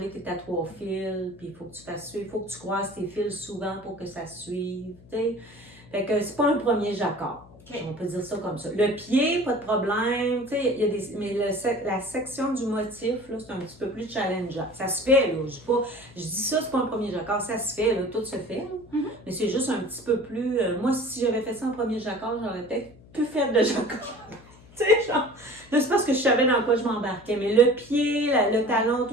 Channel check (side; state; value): left; noise; hum, 23 dB below the sound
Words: tu es à 3 fils, puis il faut que tu fasses suivre, il faut que tu croises tes fils souvent pour que ça suive. T'sais. Fait que c'est pas un premier jacquard. Okay. On peut dire ça comme ça. Le pied, pas de problème. Y a mais la section du motif, là, c'est un petit peu plus challengeant. Ça se fait, là. Je dis ça, c'est pas un premier jacquard. Ça se fait, là, tout se fait. Mais c'est juste un petit peu plus... moi, si j'avais fait ça en premier jacquard, j'aurais peut-être pu faire de jacquard. Tu sais, genre, là, c'est parce que je savais dans quoi je m'embarquais, mais le pied, le talon,